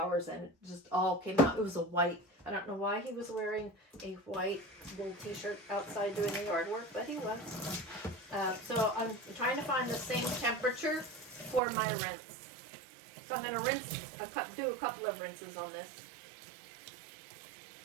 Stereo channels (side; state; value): left; drops out; at 11.6 s